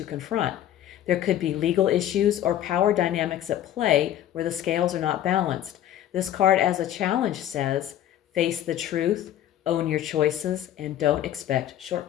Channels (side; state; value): right; quieter; 11.8 dB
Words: confront. There could be legal issues or power dynamics at play where the scales are not balanced. This card as a challenge says, face the truth, own your choices, and don't expect